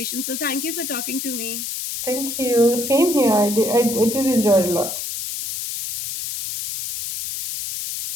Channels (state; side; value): noise; left; hiss, 5 dB below the sound